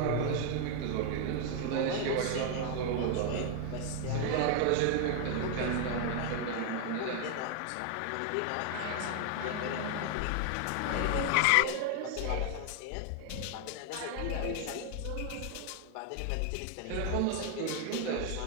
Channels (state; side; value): different; both; correlation 0.00